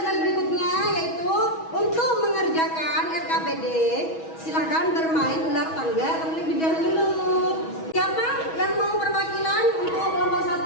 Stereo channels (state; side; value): late; right; 6.2 ms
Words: slide berikutnya, yaitu untuk mengerjakan RKPD silakan bermain ular tangga terlebih dahulu. Siapa yang mau perwakilan untuk kelompok